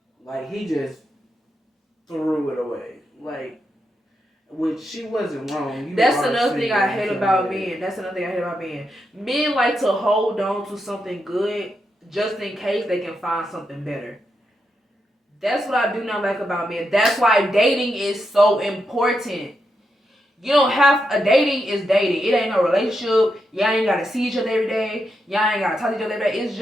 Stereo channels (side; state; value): both; normal; correlation 0.84